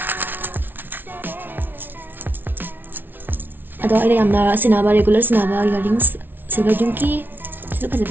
ado ina yamna sinaba regular sinaba earrings silver jumki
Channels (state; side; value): late; left; 0.095 ms